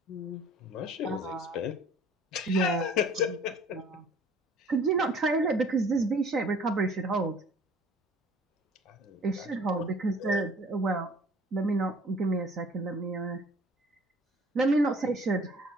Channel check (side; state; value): both; normal; correlation 0.52